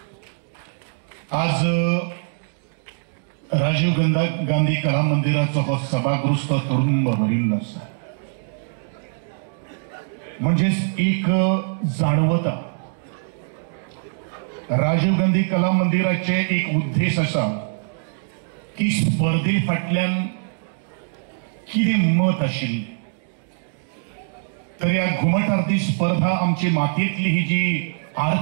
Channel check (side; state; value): left; silent; digital silence